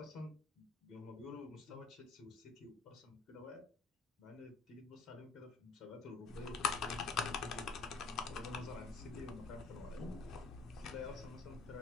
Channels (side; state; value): right; quieter; 4.2 dB